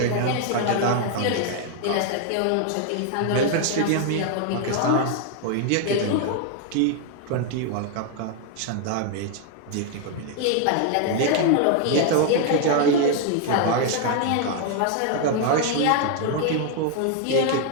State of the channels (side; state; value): both; different; correlation 0.00